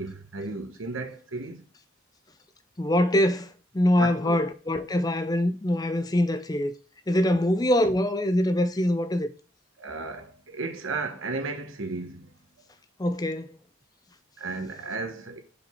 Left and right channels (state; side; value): normal; both; correlation 0.74